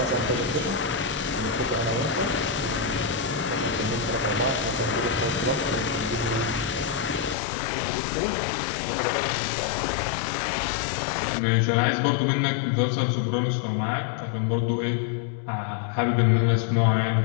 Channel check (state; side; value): drops out; right; at 7.4 s